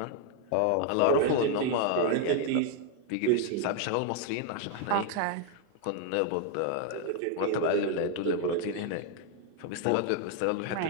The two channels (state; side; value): different; both; correlation 0.00